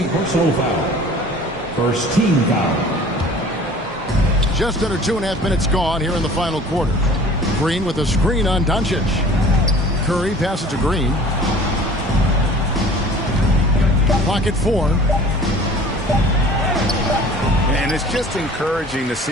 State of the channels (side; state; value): both; normal; correlation 0.46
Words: First team foul. Just under 2.5 minutes gone here in the final quarter. Green with a screen on Doncic. Curry passes to Green. Clock at 4. And it's just encouraging to